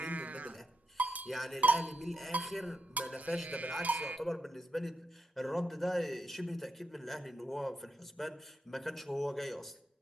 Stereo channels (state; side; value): normal; both; correlation 0.85